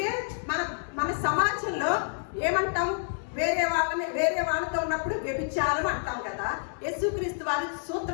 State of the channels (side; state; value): right; silent; 59 dB below the other